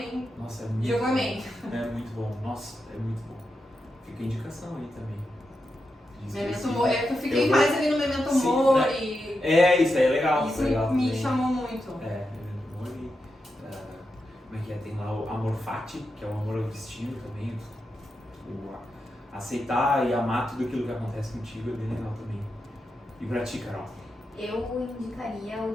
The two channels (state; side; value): normal; both; correlation 0.87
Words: Nossa, é muito jogamente. bom. É muito bom. Nossa, é muito bom. Fica a indicação aí também. Memento Mori, eu fiquei mais ali no Memento Mori. Isso aí é legal. Isso legal me também. chamou muito. Memento Mori. Como é que é? Tem lá o Amor Fati, que é o amor ao destino também. Aceitar e amar tudo aquilo que acontece contigo é bem legal também. E pra ti, Carol? Eu indicaria o